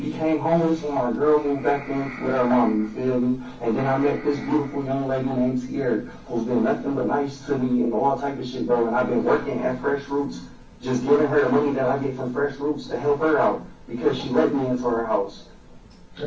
became homeless when my girl moved back in with her mom, you feel me? And then I met this beautiful young lady named Sierra, who's been nothing but nice to me and all type of shit, bro. And I've been working at Fresh Roots, just giving her the money that I get from Fresh Roots to help her out because she let me into her house.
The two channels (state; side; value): identical; both; correlation 1.00